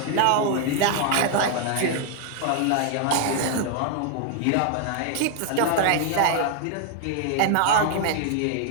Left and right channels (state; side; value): different; both; correlation 0.00